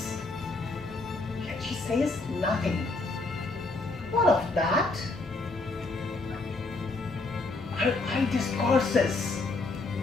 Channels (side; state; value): right; quieter; 3.4 dB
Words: yet she says nothing. What of that? Her eye discourses.